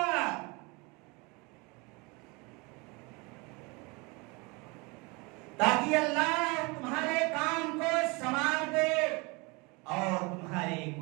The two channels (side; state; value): left; quieter; 27.7 dB